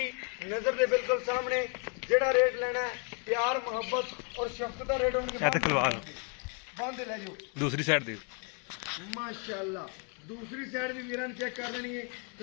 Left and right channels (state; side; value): quieter; right; 37.2 dB